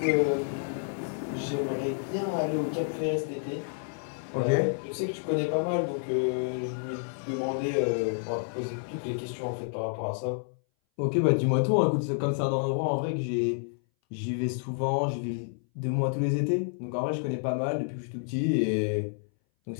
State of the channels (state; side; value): silent; right; 58 dB below the other